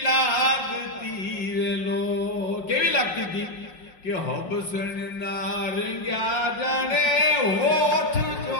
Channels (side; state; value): right; late; 5.6 ms